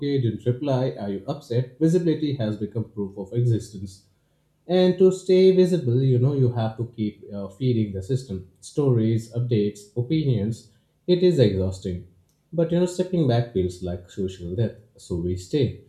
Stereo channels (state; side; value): identical; both; correlation 1.00